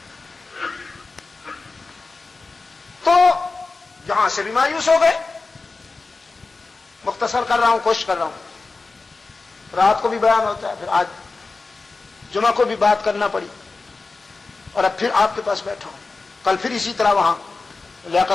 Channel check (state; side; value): quieter; right; 3.9 dB